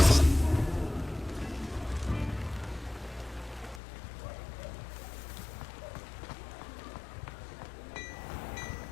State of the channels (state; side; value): drops out; right; at 3.8 s